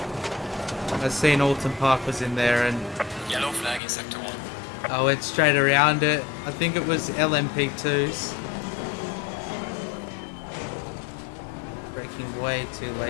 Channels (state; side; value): drops out; right; at 3.8 s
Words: I seen Oulton Park was in there and Yellow flag in sector 1. I went straight around it. I think it was LMP2s. Braking way too